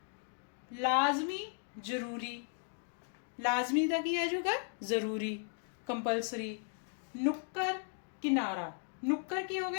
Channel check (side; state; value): right; silent; 54 dB below the other